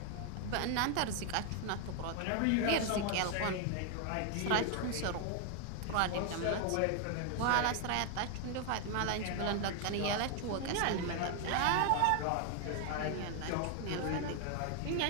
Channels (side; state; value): both; different; correlation 0.01